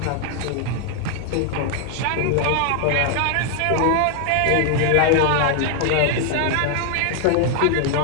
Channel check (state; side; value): different; both; correlation 0.00